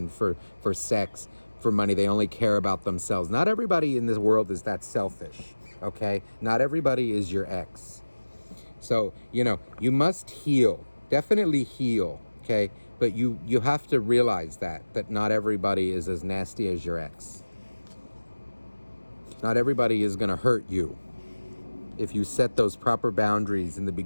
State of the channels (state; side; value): inverted; both; correlation -1.00